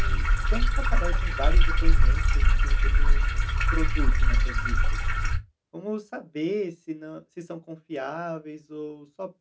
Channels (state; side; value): identical; both; correlation 1.00